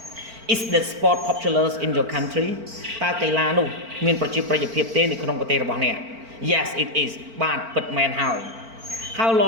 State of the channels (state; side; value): late; left; 4.4 ms